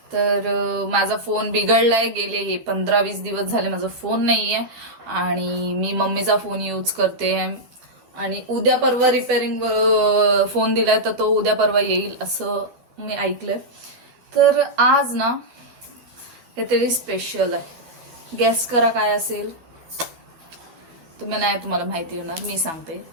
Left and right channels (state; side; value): late; left; 12 ms